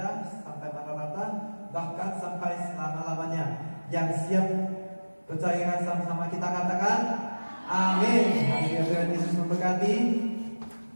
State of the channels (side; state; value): both; inverted; correlation -1.00